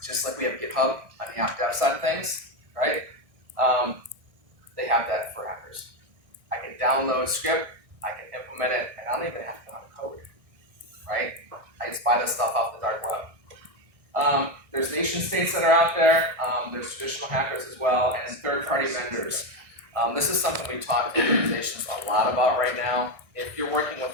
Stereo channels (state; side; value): late; left; 1.6 ms